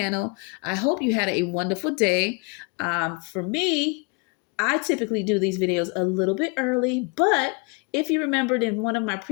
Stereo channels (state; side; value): quieter; right; 31.3 dB